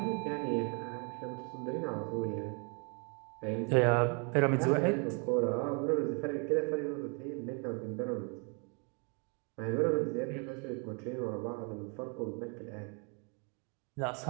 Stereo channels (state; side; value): quieter; left; 36.2 dB